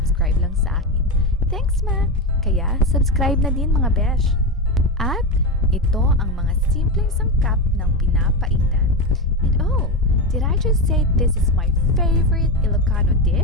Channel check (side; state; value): both; normal; correlation 0.16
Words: lang sa akin. Thanks, Ma! Kaya subscribe na din mga besh! At ito ang mga simpleng sangkap ng pinapaitan. And oh, did I just say this is my favorite Ilocano